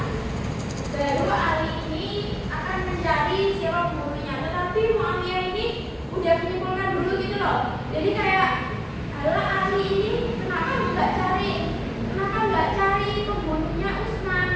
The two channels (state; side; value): identical; both; correlation 1.00